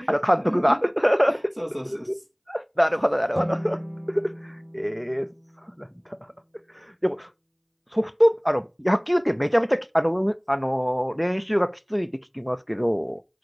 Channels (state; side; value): identical; both; correlation 1.00